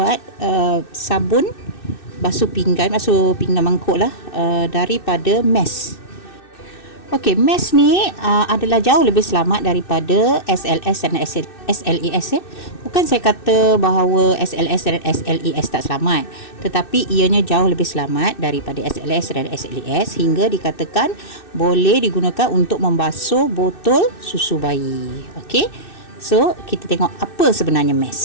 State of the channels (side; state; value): right; late; 2.6 ms